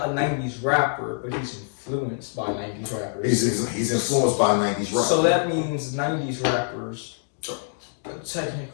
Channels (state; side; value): silent; right; digital silence